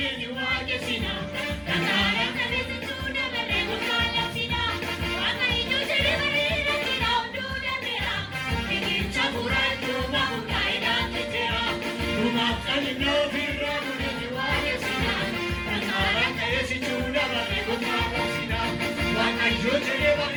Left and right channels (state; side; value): identical; both; correlation 1.00